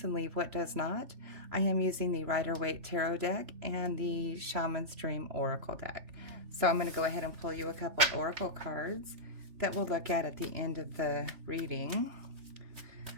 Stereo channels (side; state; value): left; late; 3.4 ms